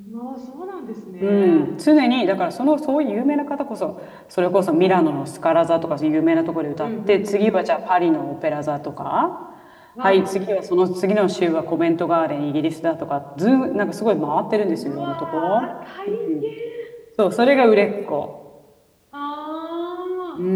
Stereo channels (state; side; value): identical; both; correlation 1.00